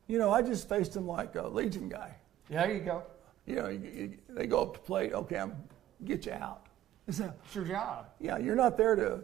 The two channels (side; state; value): left; quieter; 13.1 dB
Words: I just faced him like a Legion guy. Yeah, there you go. They go up to plate. Okay, I'm get you out. It's your job. Yeah, you're not there to